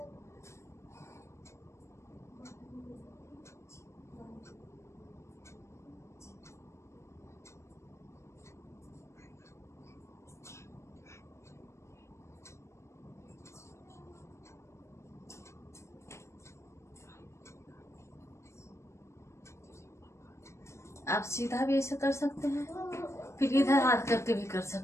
आप सीधा भी ऐसे कर सकते हैं, फिर इधर हाथ करके भी कर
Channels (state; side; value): late; right; 0.13 ms